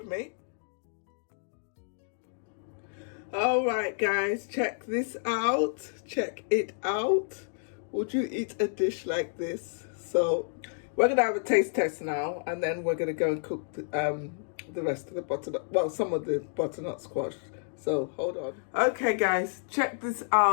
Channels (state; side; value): silent; right; digital silence